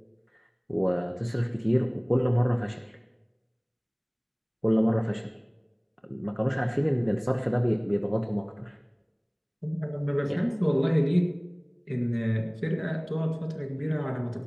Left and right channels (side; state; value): both; identical; correlation 1.00